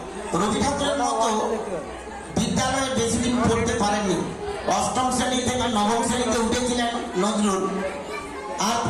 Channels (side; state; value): both; identical; correlation 1.00